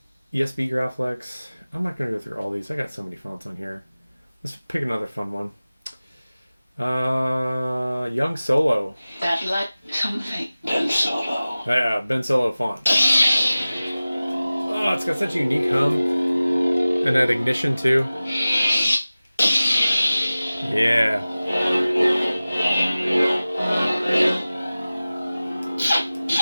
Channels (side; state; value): both; inverted; correlation -0.97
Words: ESB Graphics. I'm not going to go through all these. I got so many fonts on here. Let's pick another fun one. Young Solo. That like something. Ben Solo. Yeah, Ben Solo font. Oh, it's got such a unique hum. And that ignition too. Yeah.